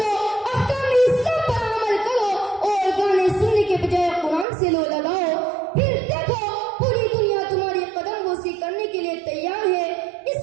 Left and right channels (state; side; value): drops out; left; at 4.5 s